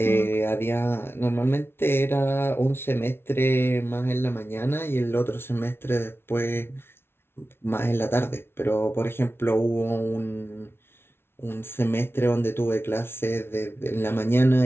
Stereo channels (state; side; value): late; right; 0.12 ms